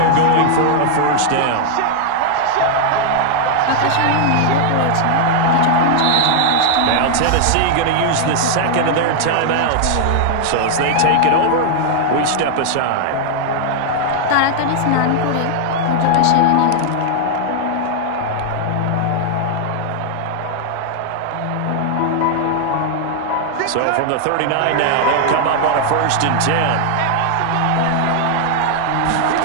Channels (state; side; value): different; both; correlation -0.01